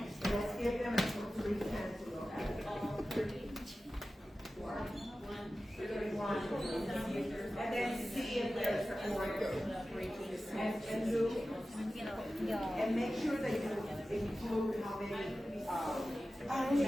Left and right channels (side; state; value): both; normal; correlation 0.95